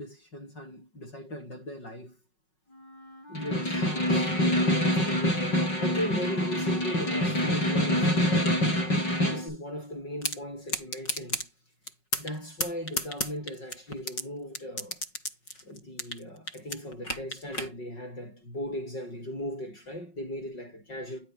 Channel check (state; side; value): late; right; 5.4 ms